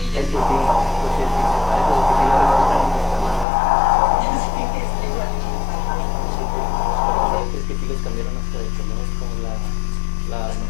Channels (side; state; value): right; drops out; at 3.5 s